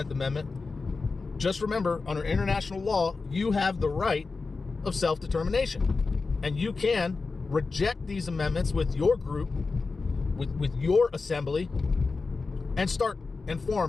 Amendment, just remember, under international law, you have the right of self-determination. And you can reject these amendments with your group, with your assembly, and start and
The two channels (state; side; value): quieter; right; 4.2 dB